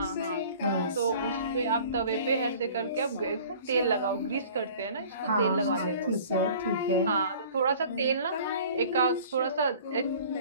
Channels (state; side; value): inverted; both; correlation -0.47